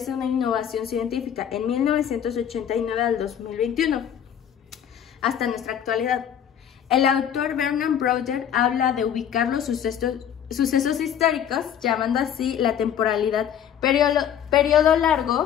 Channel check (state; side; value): quieter; right; 9.3 dB